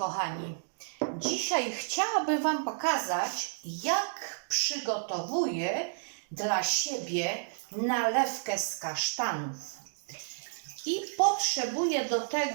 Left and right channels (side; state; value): left; silent; digital silence